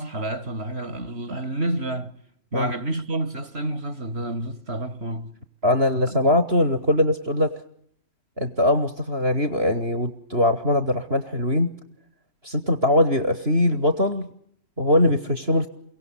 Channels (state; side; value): late; left; 3.0 ms